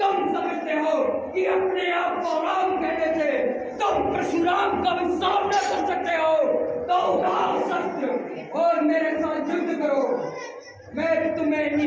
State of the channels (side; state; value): both; identical; correlation 1.00